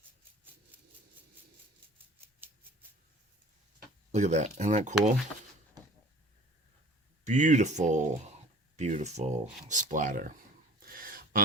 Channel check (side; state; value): both; normal; correlation 0.47